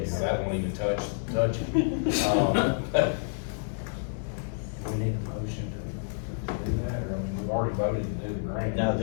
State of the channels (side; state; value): right; silent; 59 dB below the other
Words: That won't even touch it. We need a motion to do that, or I mean, we've already voted to do the grant. No,